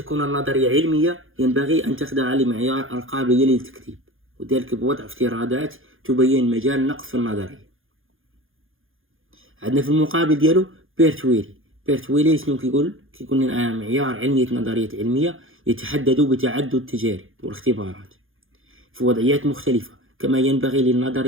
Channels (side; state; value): left; late; 0.59 ms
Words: النظرية علمية ينبغي أن تخضع لمعيار القابلية للتكذيب، وذلك بوضع افتراضات تبين مجال نقص في النظرية. عندنا في المقابل ديالو بيرت ويلي شنو كيقول لنا معيار علمية نظريات علمية يتحدد بتعدد التجارب والاختبارات في وضعيات مختلفة، كما ينبغي